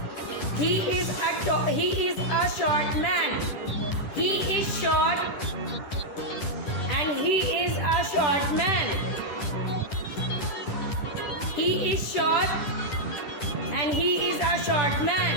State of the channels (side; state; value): right; late; 10 ms